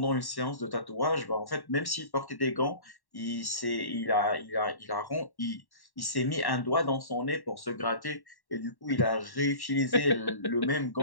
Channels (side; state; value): right; late; 1.1 ms